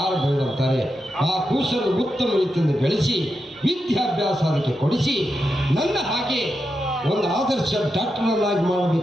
ಬೇಡಂತಾರೆ. ಆ ಕೂಸನ್ನು ಉತ್ತಮ ರೀತಿಯಿಂದ ಬೆಳೆಸಿ ವಿದ್ಯಾಭ್ಯಾಸ ಅದಕ್ಕೆ ಕೊಡಿಸಿ ನನ್ನ ಹಾಗೆ ಒಂದು ಆದರ್ಶ ಡಾಕ್ಟರ್ನಾಗಿ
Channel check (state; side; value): normal; both; correlation 0.87